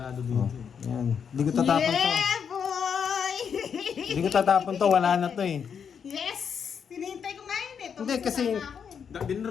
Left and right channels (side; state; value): right; quieter; 7.1 dB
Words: dito Oh, eh. yan. Hindi ko tatapon to. Yeah, boy! Hindi ko tatapon to, wala na to eh. Yes! Tinihintay ko nga yun eh. Hindi, kasi- Tumasama ako eh.